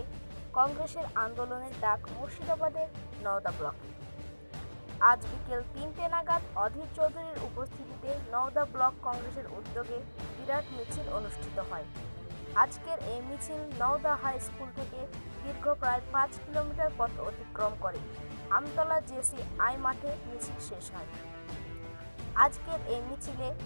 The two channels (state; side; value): inverted; both; correlation -1.00